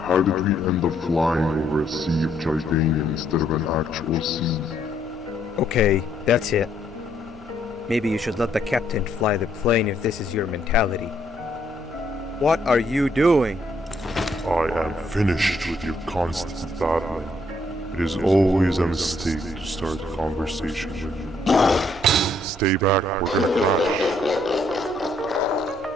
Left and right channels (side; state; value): both; normal; correlation 0.70